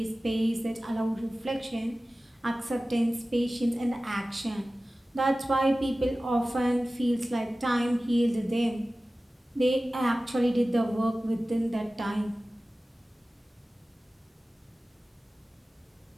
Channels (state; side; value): normal; both; correlation 0.96